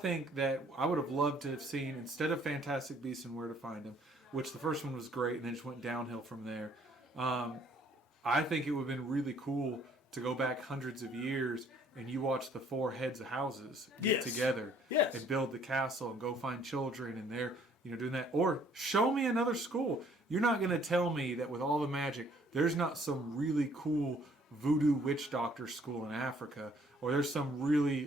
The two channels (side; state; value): both; normal; correlation 0.61